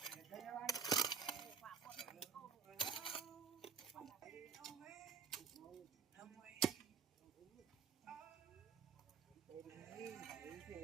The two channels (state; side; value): quieter; left; 6.2 dB